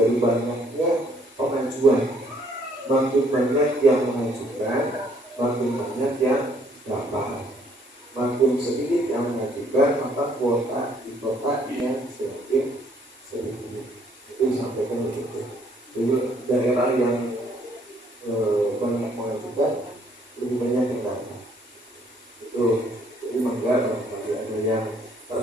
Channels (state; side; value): normal; both; correlation 0.64